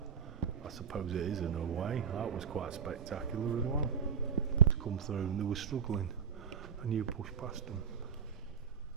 I suppose it is in a way. That was quite spectacular as well. To come through and they were struggling and you pushed past them.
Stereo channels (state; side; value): quieter; left; 7.3 dB